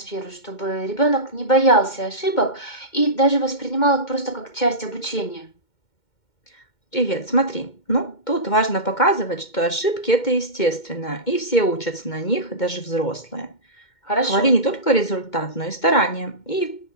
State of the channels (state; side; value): late; right; 2.2 ms